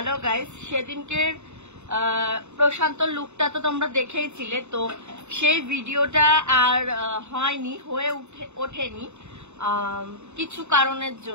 guys, সেদিনকের প্রশান্ত লুকটা তো তোমরা দেখেইছিলে। তো সেই ভিডিওটা আর হয়নি, হয়ে ওঠেনি কিছু কারণের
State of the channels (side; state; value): left; late; 0.82 ms